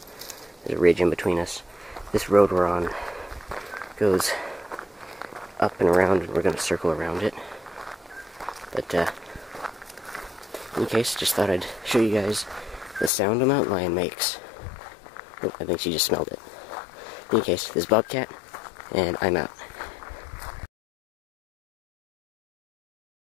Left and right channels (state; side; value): drops out; right; at 13.1 s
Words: There's a ridge in between us. This road we're on goes up and around, and we're going to circle around it. But, in any case, just thought I'd show you guys the sound a mountain lion makes. Oh, I think she just smelled it. In any case, this is Bobcat, and I'm out.